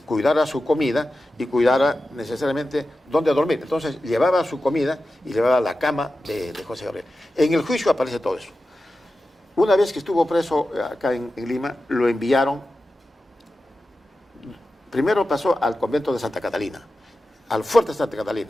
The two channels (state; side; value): normal; both; correlation 0.93